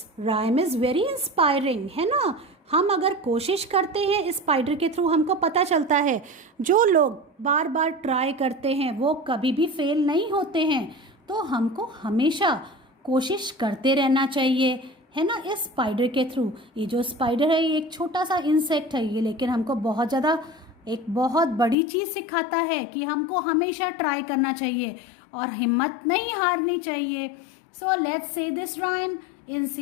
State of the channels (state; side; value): drops out; right; at 21.8 s